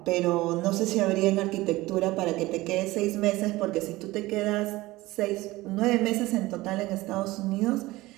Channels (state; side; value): quieter; left; 19.2 dB